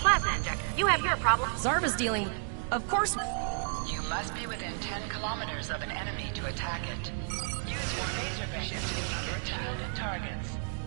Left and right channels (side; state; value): left; silent; 57 dB below the other